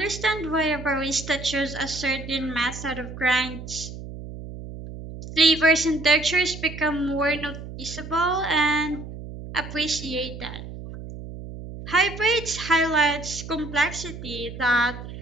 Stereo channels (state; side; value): noise; right; hum, 11 dB below the sound